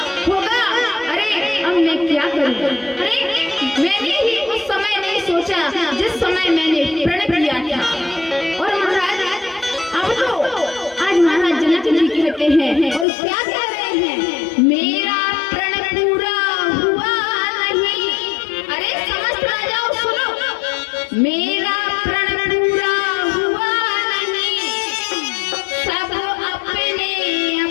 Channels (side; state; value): right; drops out; at 13.1 s